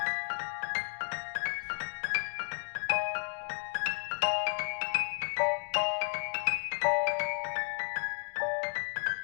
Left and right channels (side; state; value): right; silent; digital silence